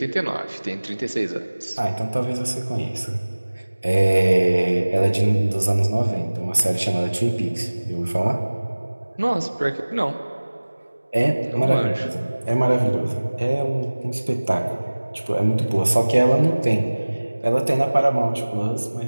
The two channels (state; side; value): inverted; both; correlation -1.00